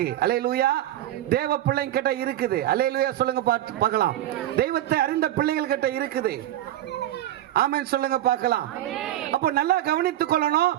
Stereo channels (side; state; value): left; quieter; 13.4 dB